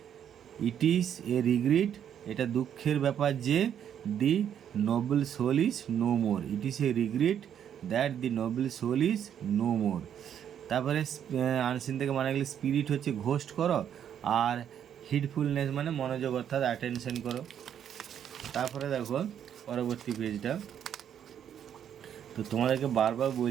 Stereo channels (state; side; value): quieter; left; 9.2 dB